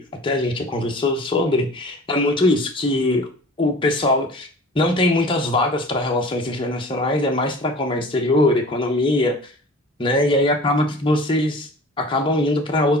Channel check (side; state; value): both; normal; correlation 0.42